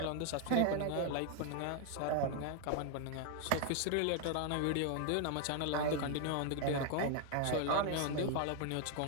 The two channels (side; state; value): both; different; correlation 0.00